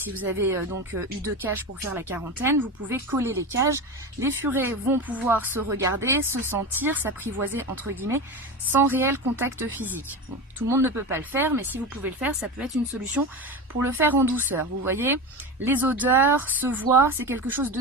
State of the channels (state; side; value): normal; both; correlation 0.23